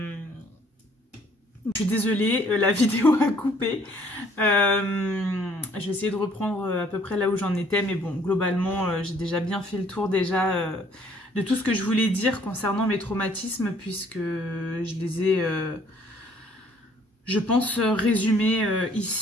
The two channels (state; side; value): normal; both; correlation 0.60